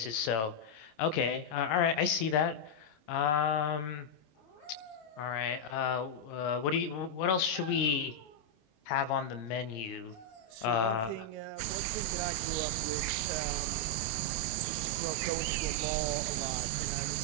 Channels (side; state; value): right; late; 26 ms